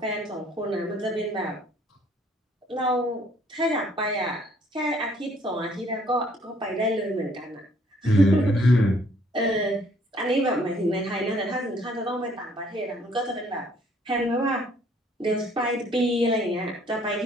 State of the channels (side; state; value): both; normal; correlation 0.62